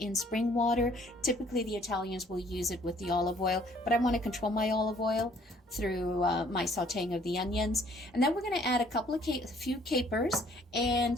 spring water. Typically the Italians will use it with the olive oil, but I want to control my olive oil through my sautéing of the onions. And then we're going to add a few capers,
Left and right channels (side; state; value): both; normal; correlation 0.60